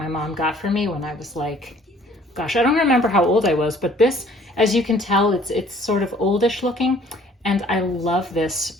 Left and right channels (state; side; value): normal; both; correlation 0.56